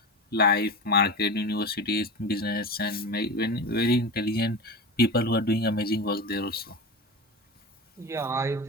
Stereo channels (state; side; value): normal; both; correlation 0.26